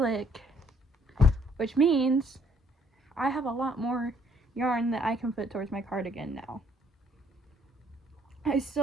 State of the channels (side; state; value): both; normal; correlation 0.65